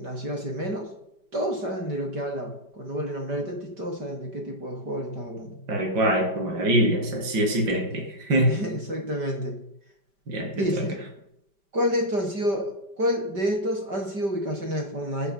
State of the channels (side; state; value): left; late; 5.1 ms